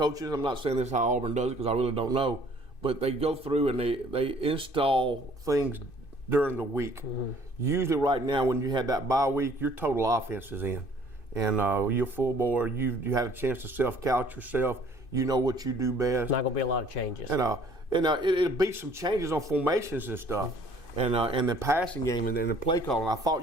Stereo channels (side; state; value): right; late; 2.6 ms